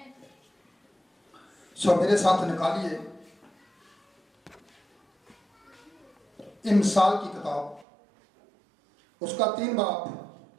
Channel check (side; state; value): left; drops out; at 7.9 s